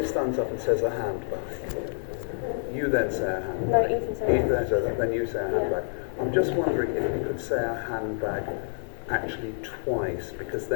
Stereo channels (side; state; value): right; silent; digital silence